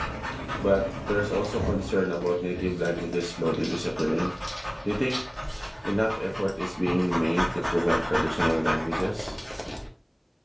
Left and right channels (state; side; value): identical; both; correlation 1.00